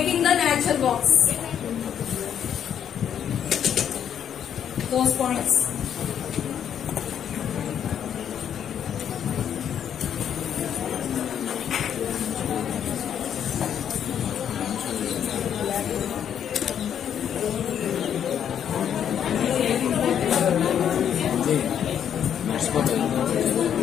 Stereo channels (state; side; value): quieter; right; 9.0 dB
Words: the nature walks. Those points.